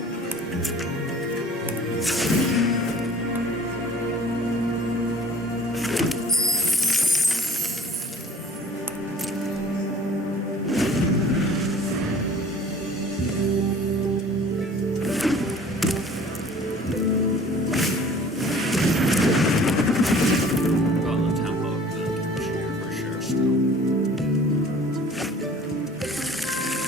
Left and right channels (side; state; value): both; normal; correlation 0.48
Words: Got the tempo of the cheer for sure still.